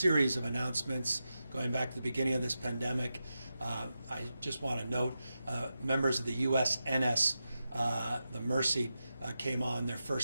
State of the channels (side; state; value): both; inverted; correlation -0.90